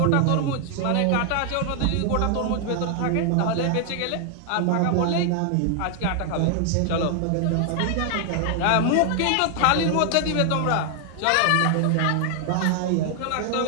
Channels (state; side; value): different; both; correlation 0.00